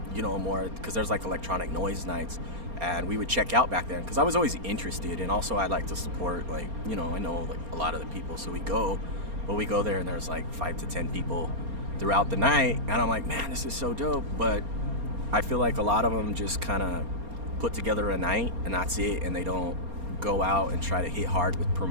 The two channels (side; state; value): left; late; 4.3 ms